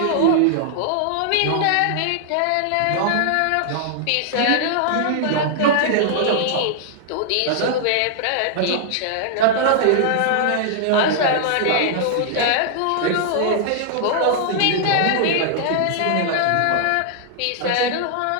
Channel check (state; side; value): different; both; correlation -0.01